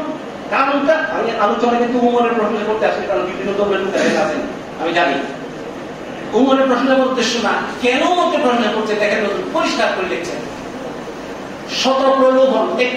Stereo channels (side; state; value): both; identical; correlation 1.00